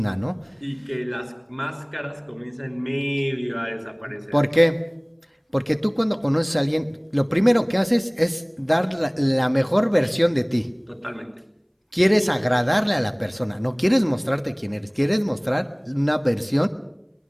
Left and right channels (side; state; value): both; identical; correlation 1.00